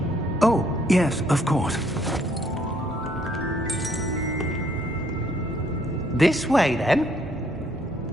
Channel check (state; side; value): normal; both; correlation 0.66